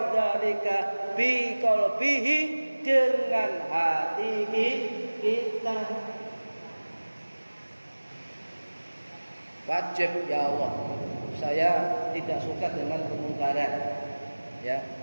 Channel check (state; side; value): inverted; both; correlation -1.00